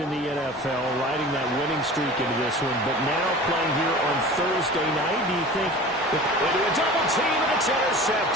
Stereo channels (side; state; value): both; normal; correlation 0.39